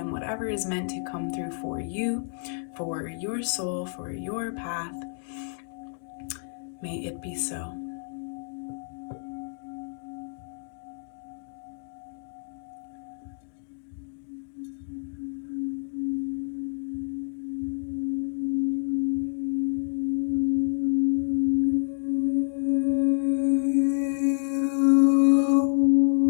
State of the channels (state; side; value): silent; right; digital silence